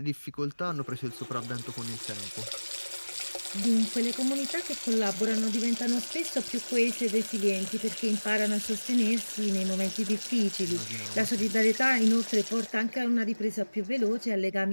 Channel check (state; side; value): inverted; both; correlation -1.00